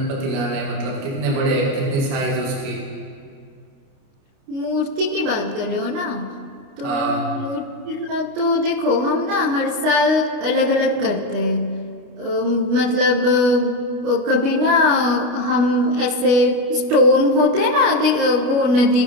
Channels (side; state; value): left; late; 29 ms